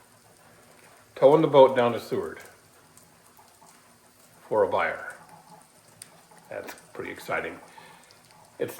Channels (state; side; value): identical; both; correlation 1.00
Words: towing the boat down to Seward for a buyer. That's pretty exciting. It's